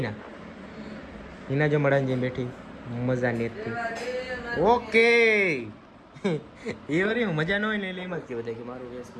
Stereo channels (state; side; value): identical; both; correlation 1.00